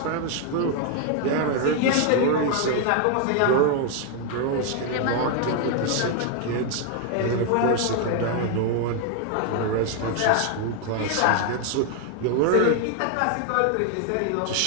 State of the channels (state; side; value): different; both; correlation 0.00